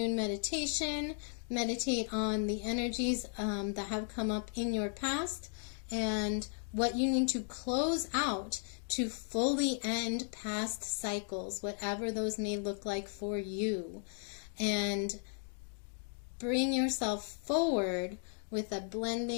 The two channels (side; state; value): right; silent; 54 dB below the other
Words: meditation. Meditate on the energies that have come up in your past and what you need to close out to fully end past cycles, whatever those may look like for you. And bring yourself forward with a